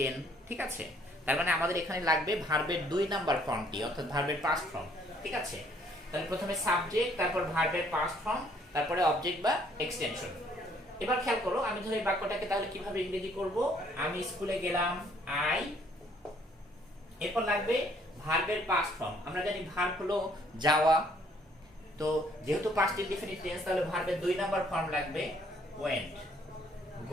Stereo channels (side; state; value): both; normal; correlation 0.63